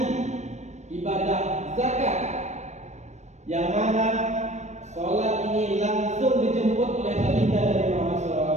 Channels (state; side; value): late; left; 0.34 ms